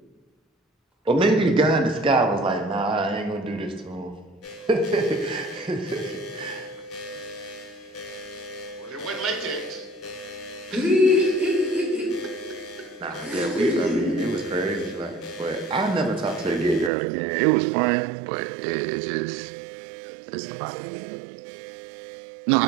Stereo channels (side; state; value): left; drops out; at 16.9 s